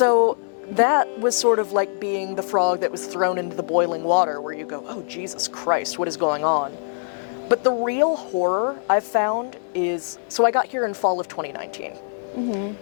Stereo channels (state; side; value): silent; right; 64 dB below the other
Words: that was sort of like being the frog that was thrown into the boiling water, where you go, oh, Jesus Christ, what is going on? But the real horror I've found is, so I got here in fall of 2019.